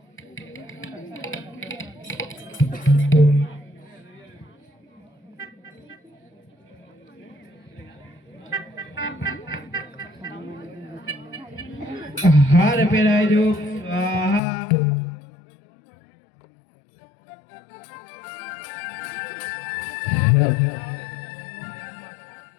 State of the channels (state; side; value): drops out; right; at 14.4 s